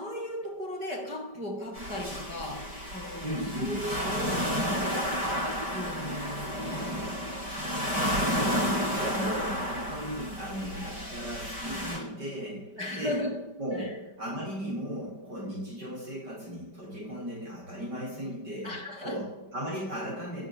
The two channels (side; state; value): left; late; 5.1 ms